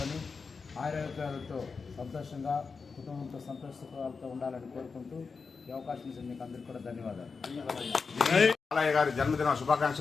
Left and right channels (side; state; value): right; quieter; 4.9 dB